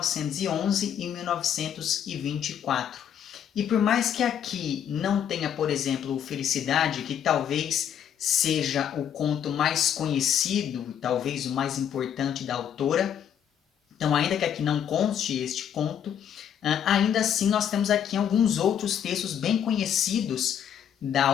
e 1924. E por mais que aqui não tenha, por exemplo, Felicidade, que talvez seja o conto mais conhecido, talvez o mais importante da autora, então ainda que aqui não conste este conto, ainda assim nós temos aqui alguns outros textos bem conhecidos da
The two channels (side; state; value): right; quieter; 9.1 dB